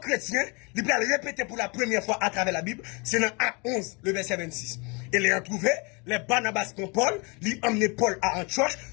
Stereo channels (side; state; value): right; quieter; 30.4 dB